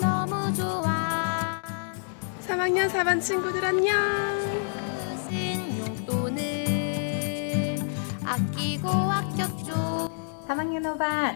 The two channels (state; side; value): silent; right; digital silence